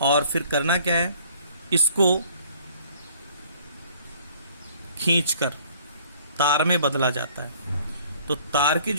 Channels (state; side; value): inverted; both; correlation -0.56